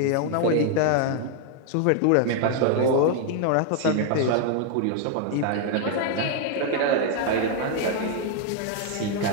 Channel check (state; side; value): different; both; correlation 0.00